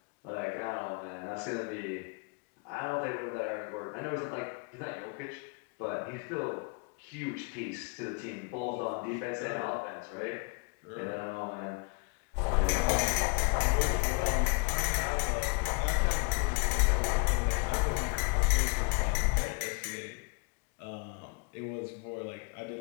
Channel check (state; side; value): quieter; right; 33.1 dB